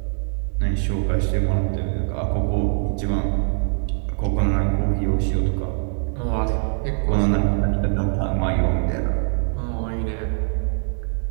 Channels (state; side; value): silent; left; 64 dB below the other